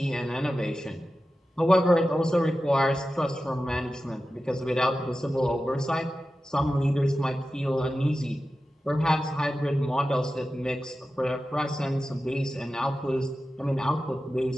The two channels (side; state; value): both; normal; correlation 0.93